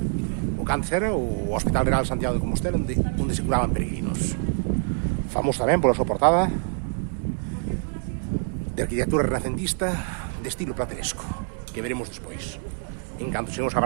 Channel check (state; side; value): silent; left; 61 dB below the other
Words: O que antes era o Hospital Real de Santiago de Compostela, onde se curaban peregrinos. Famoso tamén pola súa portada de arquitectura renacentista de estilo plateresco, que veremos despois, en canto chegamos á